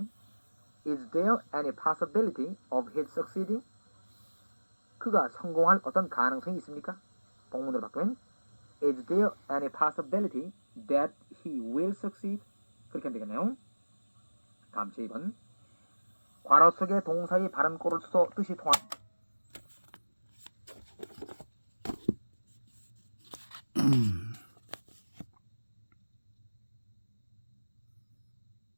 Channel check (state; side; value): inverted; both; correlation -1.00